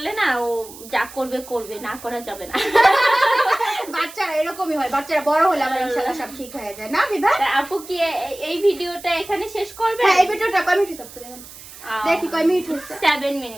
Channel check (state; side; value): noise; right; hiss, 17 dB below the sound